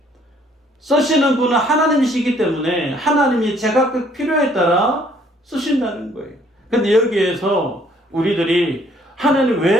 쓰시는 분은 하나님이시기 때문에 하나님이 제각각 필요에 따라 쓰신다는 거예요. 근데 여기에서 우리들이 하나님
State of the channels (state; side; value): normal; both; correlation 0.63